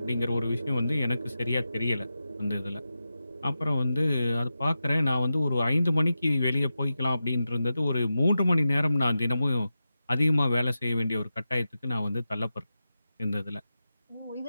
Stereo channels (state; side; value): inverted; both; correlation -0.91